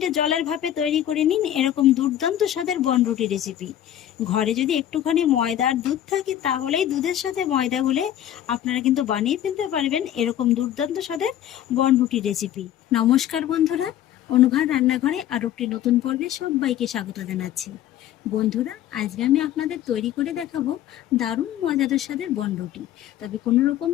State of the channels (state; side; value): quieter; right; 11.5 dB